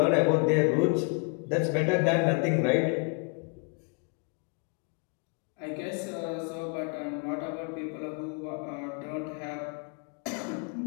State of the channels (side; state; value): right; quieter; 34.3 dB